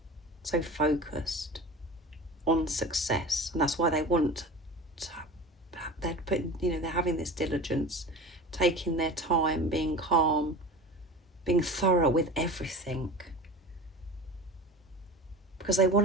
so focused on success. And that's why they want to, they're putting, you know, they're having this diligence, taking their time, being calm, being thorough with everything. Because they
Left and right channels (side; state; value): both; normal; correlation 0.34